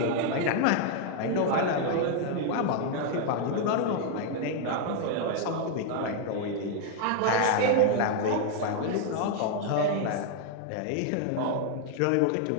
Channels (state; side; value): different; both; correlation 0.00